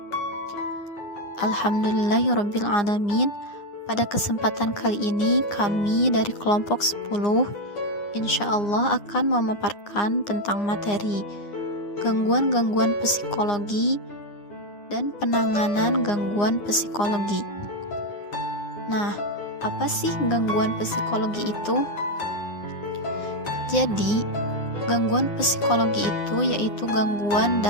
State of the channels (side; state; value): right; late; 9.8 ms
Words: Alhamdulillahirabbil alamin. Pada kesempatan kali ini kami dari kelompok 10 insyaallah akan memaparkan tentang materi gangguan-gangguan psikologi dan penanganan gangguan psikologi. Nah, apa sih gangguan psikologi itu? Jadi, gangguan psikologi itu yaitu gangguan